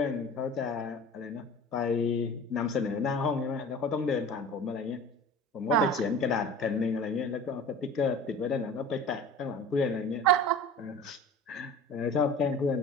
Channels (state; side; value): normal; both; correlation 0.39